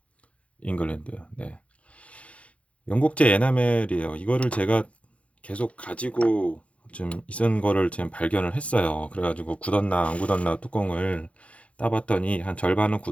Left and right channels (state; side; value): late; right; 0.063 ms